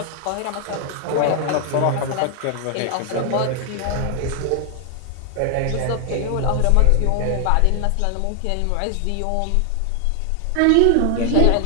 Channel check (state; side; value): different; both; correlation 0.00